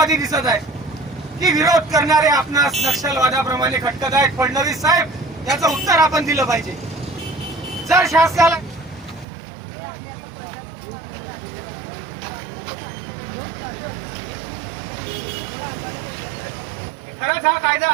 दिसत आहेत की विरोध करणारे आपणास नक्षलवादाप्रमाणे खटकत आहेत? फडणवीस साहेब, याचं उत्तर आपण दिलं पाहिजे. जर शासनाला खरंच हा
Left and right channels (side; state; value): left; drops out; at 9.2 s